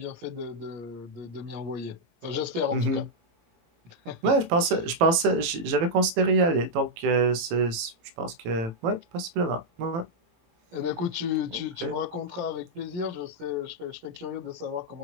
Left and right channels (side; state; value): left; late; 18 ms